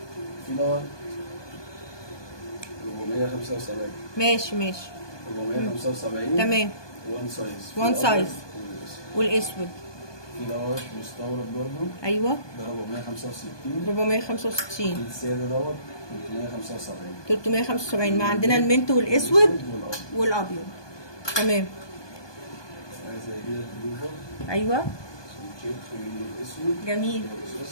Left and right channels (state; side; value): late; right; 1.2 ms